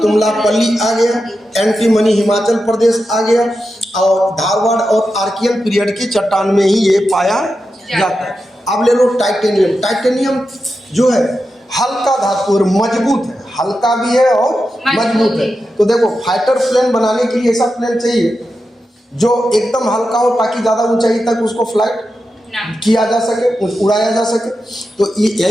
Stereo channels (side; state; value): both; normal; correlation 0.90